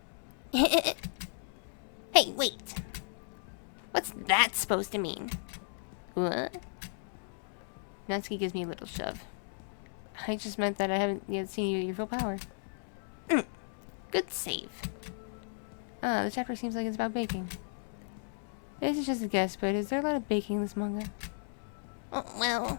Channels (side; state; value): right; silent; digital silence